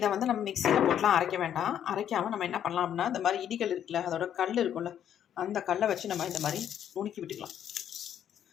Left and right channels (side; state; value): right; quieter; 9.8 dB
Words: வந்து நம்ம மிக்சியில் போட்டுலாம் அரைக்க வேண்டாம். அரைக்காமல் நம்ம என்ன பண்ணலாம் அப்படின்னா, இந்த மாதிரி இடிகள் இருக்குல்ல, அதோட கல் இருக்கும்ல, அந்த கல்லை வச்சு நம்ம இந்த மாதிரி நுணுக்கி விட்டுக்கலாம்.